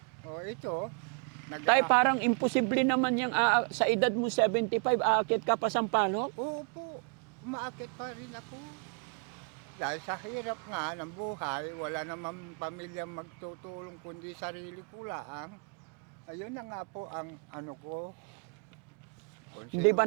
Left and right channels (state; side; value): quieter; left; 39.0 dB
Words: Tay, parang imposible naman yung sa edad mo 75, aakyat ka pa Sampaloc? Opo. Umaakit pa rin ako. Dahil sa hirap nga ng buhay, wala naman pamilya magtutulong kundi sarili ko lang. Ayun na nga po ang ano ko. Hindi